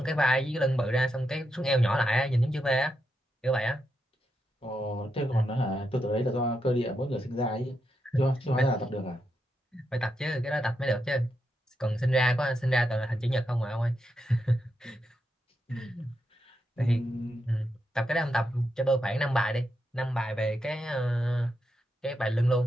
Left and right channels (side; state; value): both; normal; correlation 0.84